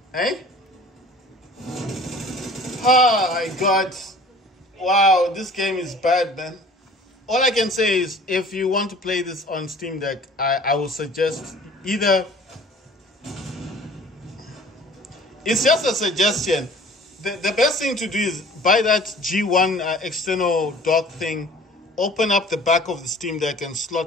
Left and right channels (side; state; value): both; normal; correlation 0.47